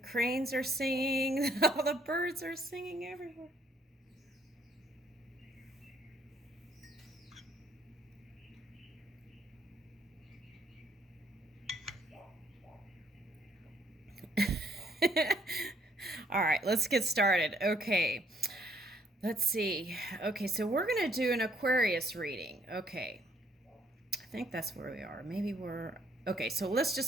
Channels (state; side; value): normal; both; correlation 0.67